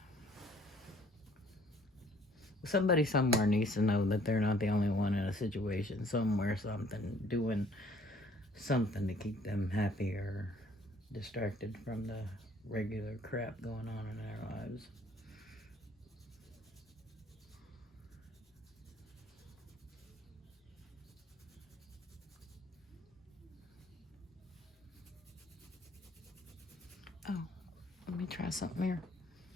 Somebody somewhere needs to know that they're not the only one in a situation. Somewhere, something, doing something to keep them happy or distracted from the regular crap going on in their lives. try something here.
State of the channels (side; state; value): both; normal; correlation 0.59